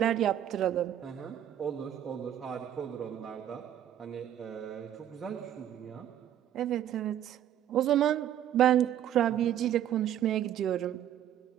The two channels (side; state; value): left; quieter; 10.9 dB